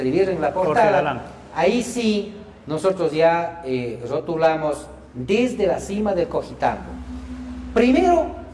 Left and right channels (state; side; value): identical; both; correlation 1.00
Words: en la portada, ahí sí nosotros ya rotulamos desde la cima del Cojitambo. Primero,